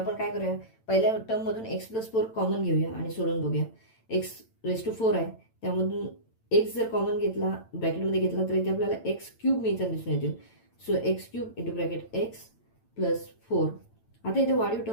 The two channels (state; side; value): late; right; 8.9 ms